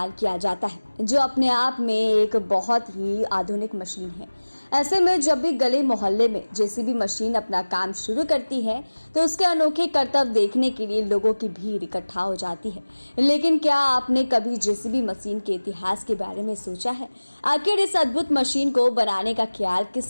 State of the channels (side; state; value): both; inverted; correlation -1.00